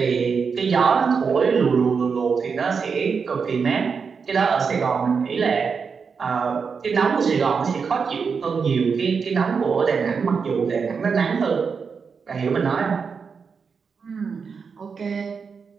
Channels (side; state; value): left; quieter; 5.7 dB